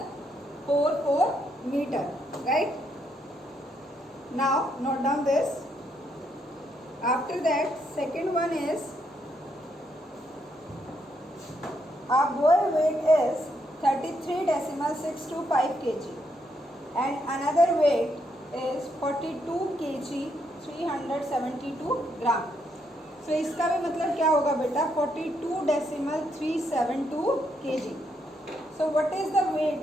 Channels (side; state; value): both; normal; correlation 0.76